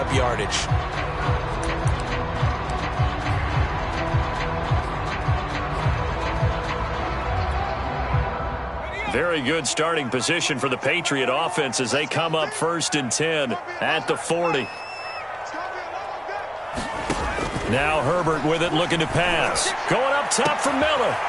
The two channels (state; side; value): identical; both; correlation 1.00